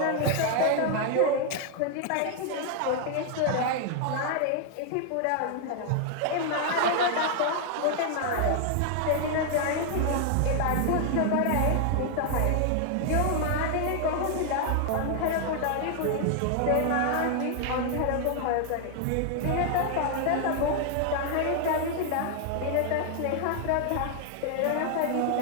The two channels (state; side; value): different; both; correlation 0.00